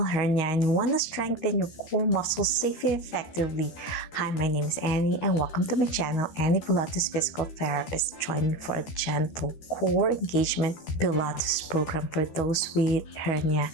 hernia and you want to strengthen your core muscles safely and effectively? Hi, my name is Annie and welcome to my channel, Annie Pilates Physical Therapist. Join me for a gentle core engagement Pilates program for those with hernia.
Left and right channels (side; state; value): right; late; 13 ms